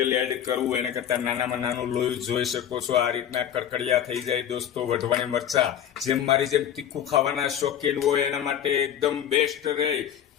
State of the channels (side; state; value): right; quieter; 9.8 dB